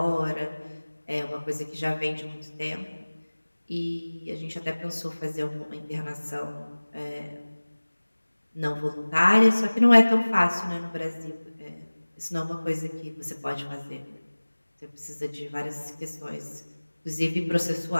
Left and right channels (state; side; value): inverted; both; correlation -1.00